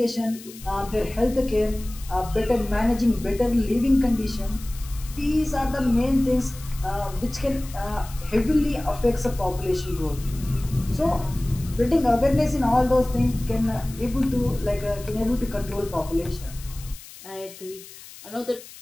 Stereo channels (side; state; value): left; noise; hiss, 17 dB below the sound